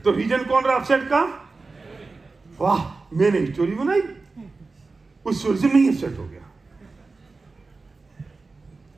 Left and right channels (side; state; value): left; quieter; 3.9 dB